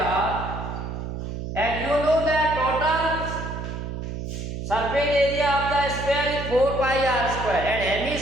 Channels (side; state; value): right; noise; hum, 6 dB below the sound